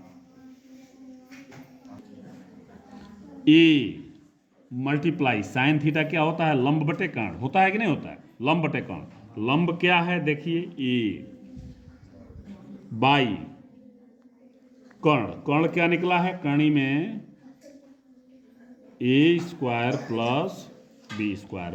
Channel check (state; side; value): identical; both; correlation 1.00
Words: ए मल्टीप्लाई साइन थीटा क्या होता है? लंब बटे कर्ण होता है कि नहीं होता है? लंब बटे कर्ण। लंब क्या है देखिए ए बाई कर्ण, कर्ण क्या निकला है? कर्णी में A square plus B square,